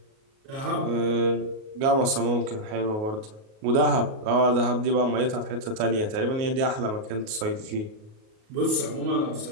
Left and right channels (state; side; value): late; left; 38 ms